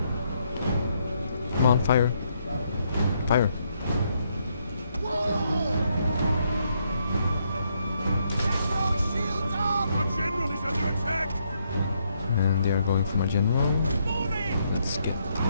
Come on, fire. Fire. And they are going for my general. Let's get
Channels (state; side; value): inverted; both; correlation -0.75